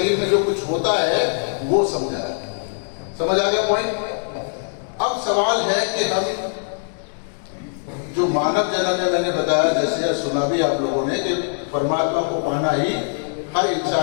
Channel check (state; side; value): silent; right; 64 dB below the other